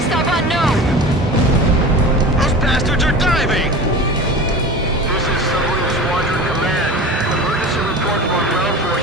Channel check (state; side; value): normal; both; correlation 0.34